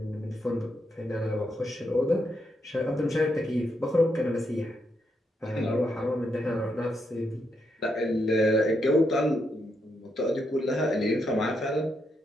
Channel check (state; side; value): normal; both; correlation 0.80